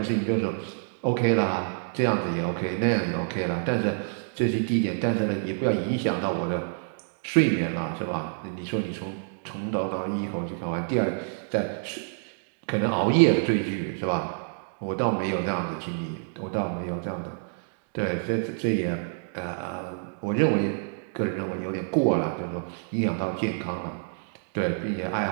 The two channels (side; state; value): left; silent; digital silence